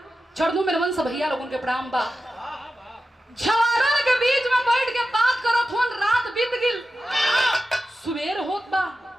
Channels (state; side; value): normal; both; correlation 0.92